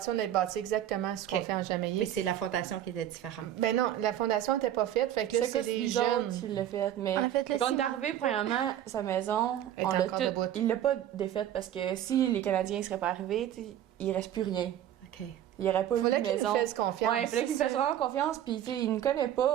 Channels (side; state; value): left; quieter; 11.4 dB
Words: on a bâti exactement ce qu'on OK. fait en Jamaïque. Mais c'est la fondation qui était différente. Ben non, la fondation n'était pas faite, fait que là, c'est les nous jeunes. autres qui l'a fait. Mais On a fait le quand on est ciment. arrivé, premièrement, sa maison, Elle on est l'a encore tout- debout. il l'a pas défaite parce que si les Canadiens ne seraient pas arrivés, tu sais, il reste plus rien. OK. Il n'y aurait pas Il eu fallait de qu'ils maison. nous fassent confiance. Ouais, il fallait qu'il me fasse vraiment confiance, puis tu sais, il ne connaît